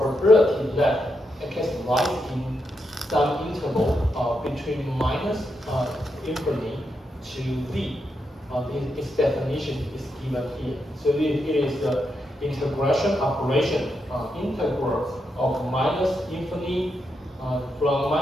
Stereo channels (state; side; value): normal; both; correlation 0.83